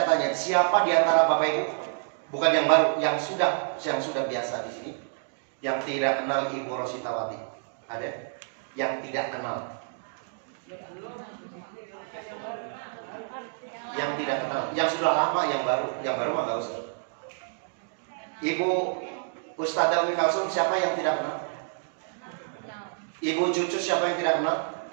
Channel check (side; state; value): left; silent; digital silence